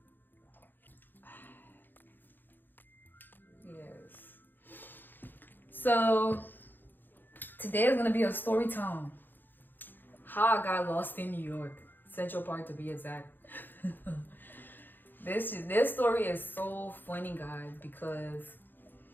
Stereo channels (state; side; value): late; right; 0.092 ms